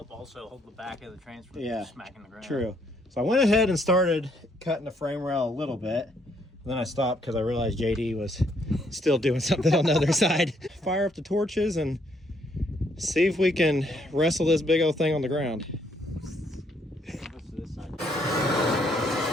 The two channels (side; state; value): both; normal; correlation 0.70